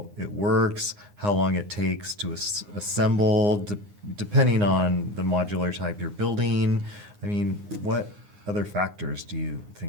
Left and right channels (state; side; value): late; left; 9.7 ms